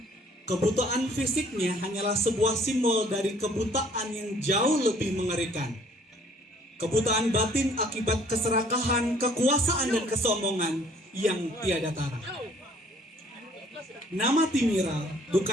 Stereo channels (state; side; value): normal; both; correlation 0.58